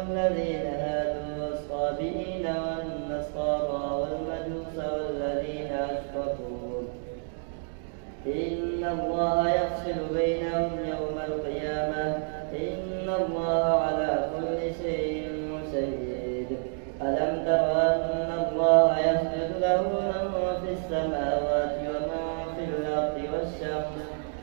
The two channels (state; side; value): silent; left; 59 dB below the other